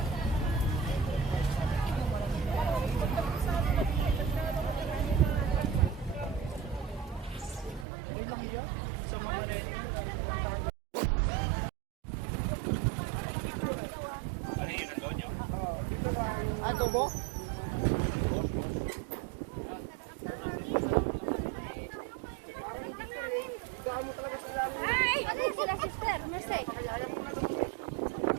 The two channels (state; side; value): drops out; left; at 7.9 s